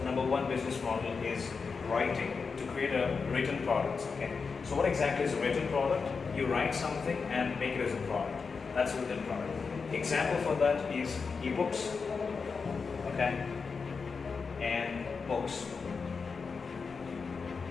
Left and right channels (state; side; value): quieter; right; 5.1 dB